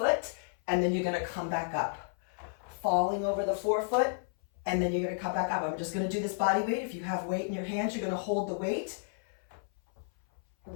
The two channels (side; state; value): right; silent; 56 dB below the other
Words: and then you're going to come back up. Falling over the forefoot and then you're going to come back up. I'm just going to do this body weight. If you have weight in your hands, you're going to hold the weight